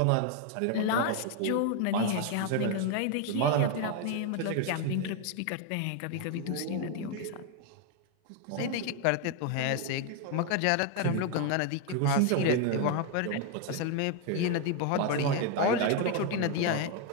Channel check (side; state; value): both; different; correlation 0.01